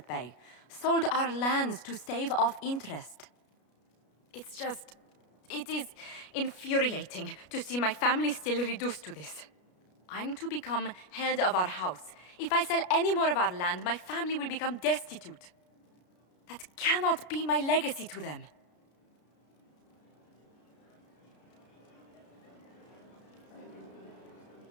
bay. Sold our lands to stave off interest. It is infuriating to see my family still reduced to this. I'm to become head of our house. If I sell any more of our land, my family will become destitute. That cannot be my legacy to them.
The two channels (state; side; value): late; right; 33 ms